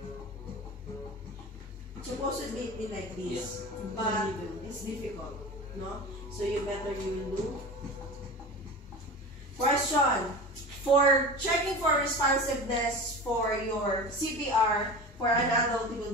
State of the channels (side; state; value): both; normal; correlation 0.31